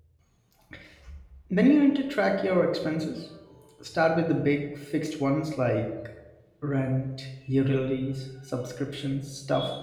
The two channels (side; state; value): both; identical; correlation 1.00